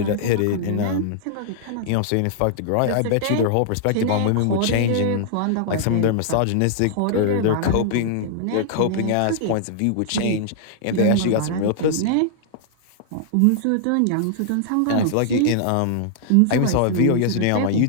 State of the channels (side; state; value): both; different; correlation -0.01